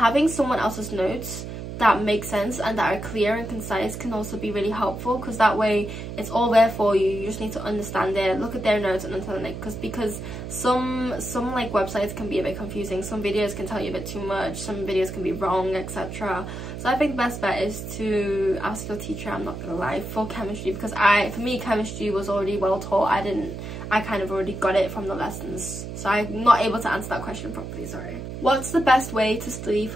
someone else's notes that make sense and that are clear and concise can also be really helpful, because that way it's all there for you. You just need to understand it, look at their notes and understand it, because some like websites can be a bit confusing, some videos can tell you a bit too much, some videos can be wrong, etc. So I think the best bet is to ask your teacher, I'm not gonna lie, for chemistry, because for me chemistry was already well taught. I kind of already got it from the lessons, so I'm not able to answer that question properly, sorry. What's the best way to study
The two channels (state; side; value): noise; right; hum, 8 dB below the sound